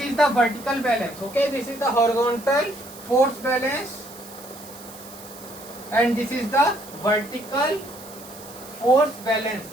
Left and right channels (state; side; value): noise; right; hiss, 17 dB below the sound